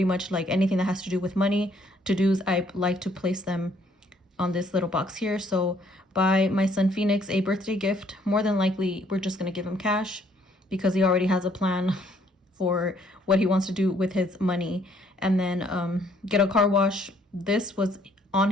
much like anything that has to do with money. To-dos, I like to place them on this little box here. So buy my son Phoenix a birthday gift. More than likely, we're just going to give him cash because he already has a plan for what he wants to do with his money. And then get a car wash. This was on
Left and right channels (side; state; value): both; normal; correlation 0.65